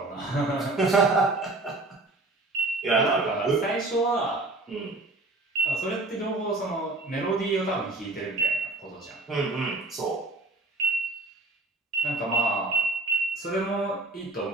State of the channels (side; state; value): left; quieter; 3.1 dB